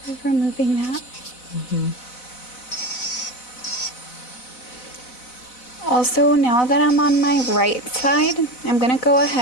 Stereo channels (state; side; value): late; right; 4.0 ms